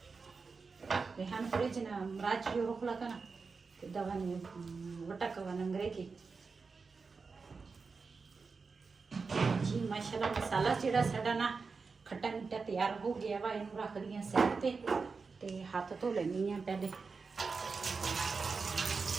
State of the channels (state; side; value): quieter; left; 4.7 dB